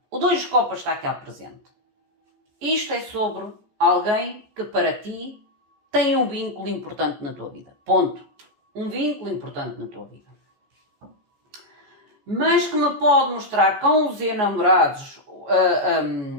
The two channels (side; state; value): left; late; 14 ms